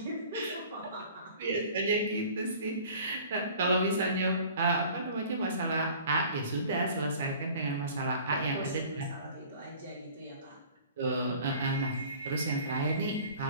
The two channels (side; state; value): both; inverted; correlation -0.47